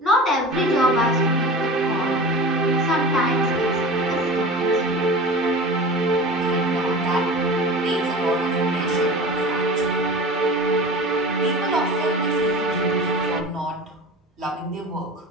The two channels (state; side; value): normal; both; correlation 0.34